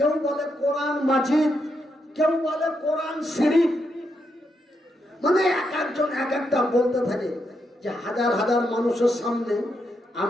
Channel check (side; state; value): both; normal; correlation 0.81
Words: বলে কোরআন মাজিদ, কেউ বলে কোরআন শরীফ। মানে এক একজন এক একটা বলতে থাকে, যে হাজার হাজার মানুষের সামনে